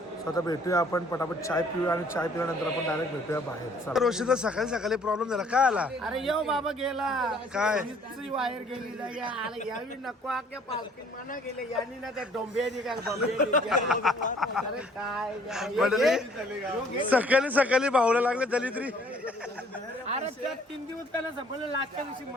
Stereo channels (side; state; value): both; normal; correlation 0.58